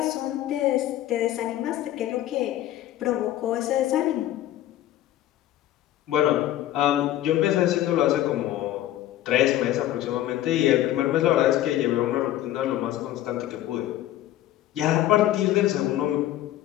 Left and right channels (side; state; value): right; quieter; 13.6 dB